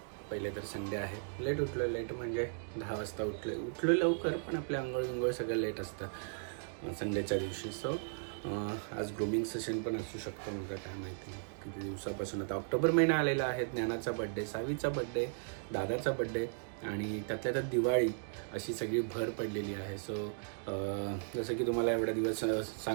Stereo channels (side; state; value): left; silent; digital silence